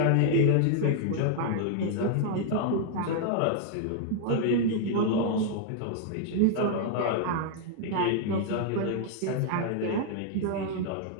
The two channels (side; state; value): both; different; correlation 0.00